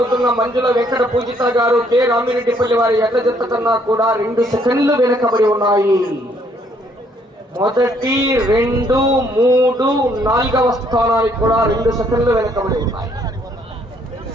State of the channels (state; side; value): normal; both; correlation 0.67